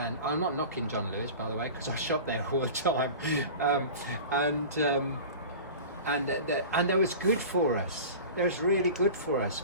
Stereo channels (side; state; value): both; inverted; correlation -0.35